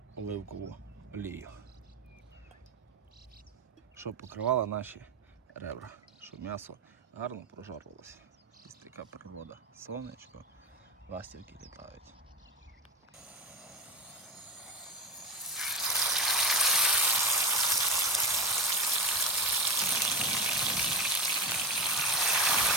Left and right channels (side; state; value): both; normal; correlation 0.19